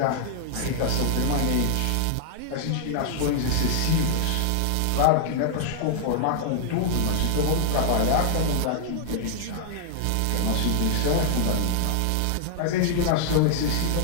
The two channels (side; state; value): both; different; correlation -0.01